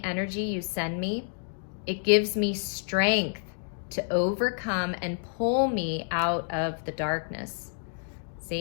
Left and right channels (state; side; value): silent; right; digital silence